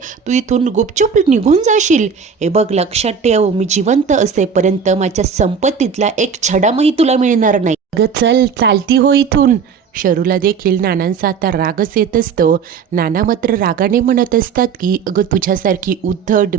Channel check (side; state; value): left; quieter; 6.3 dB